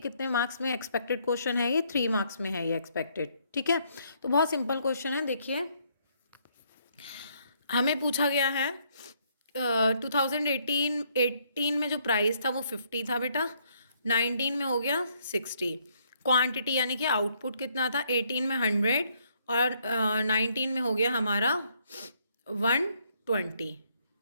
मार्क्स में एक्सपेक्टेड क्वेश्चन है, ये 3 मार्क्स में है ये एक्सपेक्टेड। ठीक है। तो बहुत सिंपल क्वेश्चन है। देखिए हमें पूछा गया है 2018 में जो प्राइस था वो 50 था बेटा, 19 में हो गया 60। क्वांटिटी यानी कि आउटपुट कितना था? 18 में 100 और 19 में हो गया हमारा 120।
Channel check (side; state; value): both; inverted; correlation -0.70